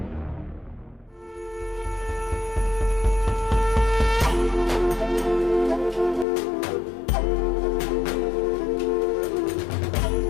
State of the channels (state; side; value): drops out; right; at 6.2 s